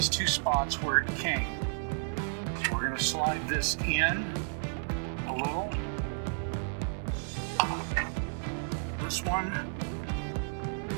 two spots where it came. So we're going to slide this in a little. This one,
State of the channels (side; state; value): left; silent; 56 dB below the other